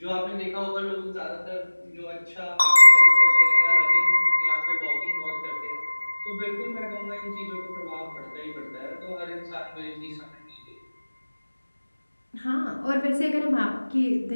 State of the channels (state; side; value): inverted; both; correlation -1.00